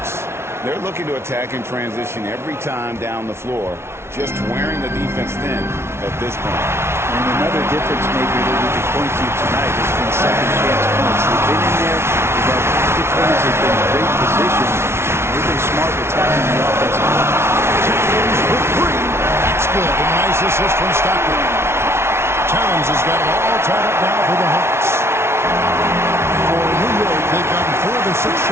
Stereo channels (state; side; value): late; left; 0.12 ms